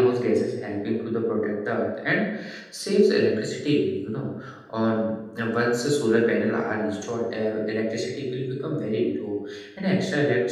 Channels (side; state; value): both; identical; correlation 1.00